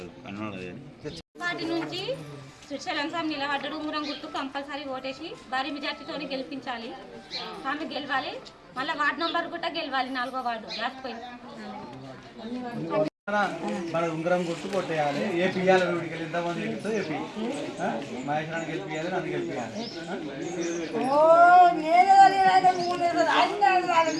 కన్నడ వాటి నుంచి శ్రీశైలం స్వామి నిలబడ్డాడు. ఉంగరం గుర్తు కంపల్సరీ ఓటేసి భారీ మెజార్టీతో గెలిపించాలి. స్వామి గెలవాలి. మళ్ళీ వార్డు నంబర్ కూడా గెలవాలి. 4వ వార్డు రాసిపోయింది. మన ఉంగరం గుర్తు కొట్టేయాలి. ఏపీ ఇవ్వాలి. వీడికి వెళ్ళి ఎంతమంది గెలుస్తో ఏపీ మహేశ్వరాన్ని గెలిపియాలి. నన్ను గెలిపియాలి.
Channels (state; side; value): identical; both; correlation 1.00